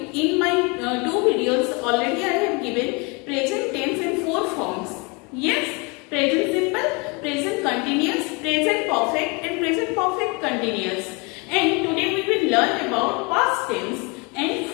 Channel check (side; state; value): right; quieter; 29.8 dB